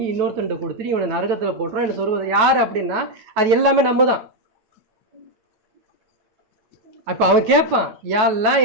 இன்னொருத்தன்ட்ட கொடுத்துட்டு இவனை நரகத்தில் போட்டுறான். என்ன சொல்வது யார் அப்படின்னா, அது எல்லாமே நம்ம தான். அப்போ அவன் கேட்பான், யாரெல்லாம்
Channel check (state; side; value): late; left; 9.1 ms